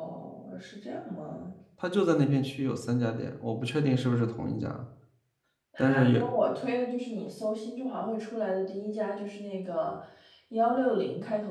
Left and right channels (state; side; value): identical; both; correlation 1.00